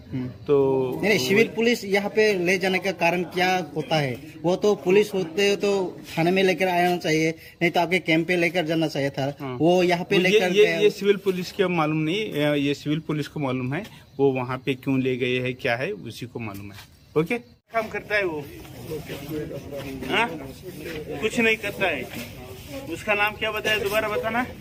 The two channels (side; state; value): both; identical; correlation 1.00